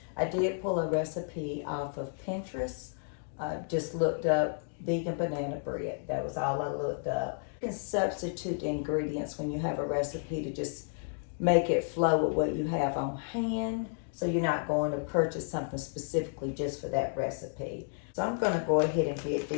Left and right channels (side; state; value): right; silent; digital silence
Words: I did pull a recipe off of Pinterest. Just looked up vegan banana bread. That was all I looked up. You can substitute the ingredients when you have a recipe to just make it flow with what you have on hand. So you're not going to purchase something specifically just for that recipe. So I'm going to go ahead and get